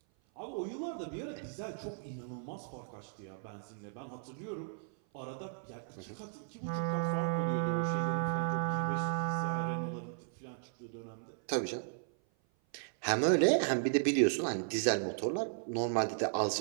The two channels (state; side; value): silent; left; 54 dB below the other